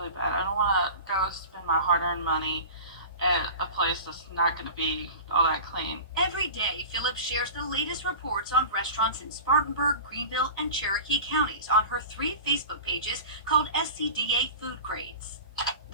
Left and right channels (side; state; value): both; inverted; correlation -0.35